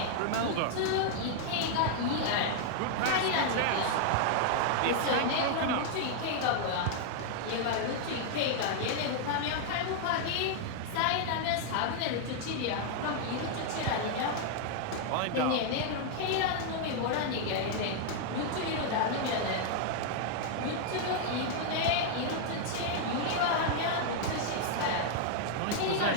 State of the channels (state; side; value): different; both; correlation 0.00